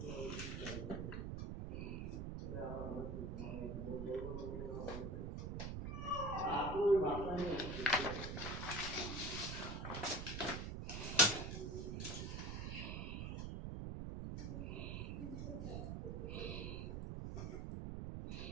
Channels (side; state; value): right; noise; rumble, 3 dB below the sound